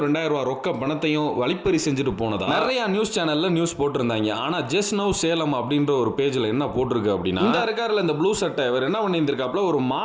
2000 ரூபாய் ரொக்க பணத்தையும் வழிப்பறி செஞ்சுட்டு போனதா நிறைய நியூஸ் சேனல்ல நியூஸ் போட்டிருந்தாங்க. ஆனா ஜஸ்ட் நவ் சேலம் அப்படின்ற ஒரு பேஜ்ல என்ன போட்டிருக்கு அப்படின்னா, இந்த இருக்காருல இந்த ப்ளூ சட்டை இவர் என்ன பண்ணியிருந்திருக்காப்ல, ஒரு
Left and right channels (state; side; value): identical; both; correlation 1.00